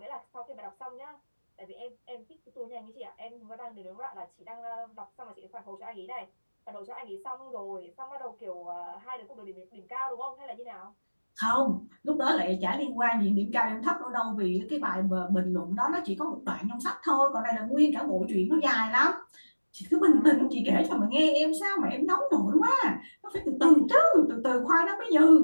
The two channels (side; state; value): both; inverted; correlation -1.00